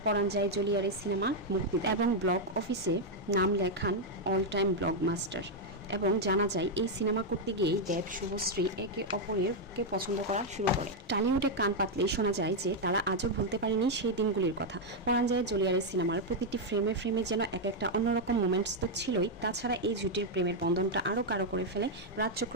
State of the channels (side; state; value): both; normal; correlation 0.00